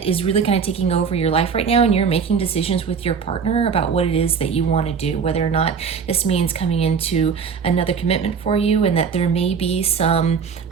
is really kind of taking over your life right now, and you're making decisions with your partner about what it is that you want to do, whether or not this means coming into another commitment for you, and that there may be some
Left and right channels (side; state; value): left; quieter; 6.1 dB